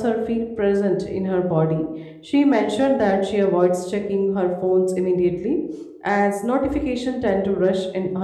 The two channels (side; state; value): both; identical; correlation 1.00